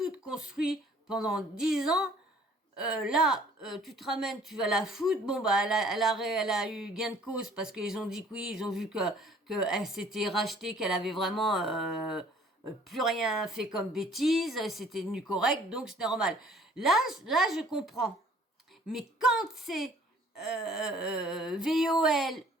construit pendant 10 ans. Tu te ramènes, tu vas la foutre. Bon, bah, elle a eu gain de cause parce qu'ils ont dit que oui, ils ont vu que elle s'était rachetée, qu'elle avait vraiment plus rien fait comme bêtise, c'était devenu correct, donc c'est normal. Là, je comprends. Mais quand c'est VOL,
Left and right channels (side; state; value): both; normal; correlation 0.55